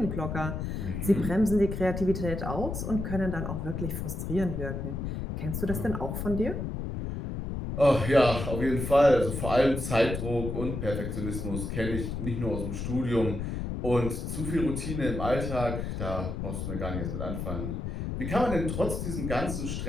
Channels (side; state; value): left; noise; rumble, 4 dB below the sound